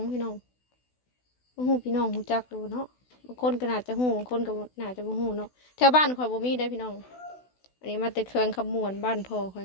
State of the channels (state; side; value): late; right; 16 ms